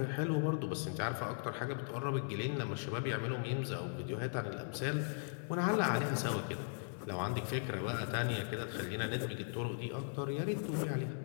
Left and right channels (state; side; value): silent; right; 52 dB below the other